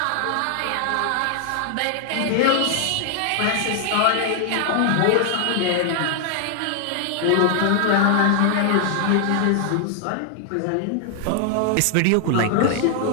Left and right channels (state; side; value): different; both; correlation 0.00